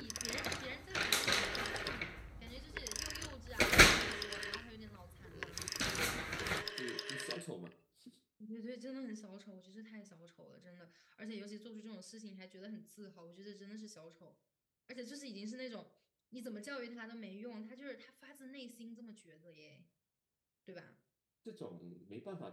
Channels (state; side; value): identical; both; correlation 1.00